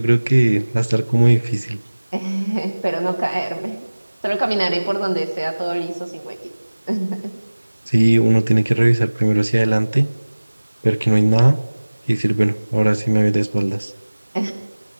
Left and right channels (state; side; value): inverted; both; correlation -1.00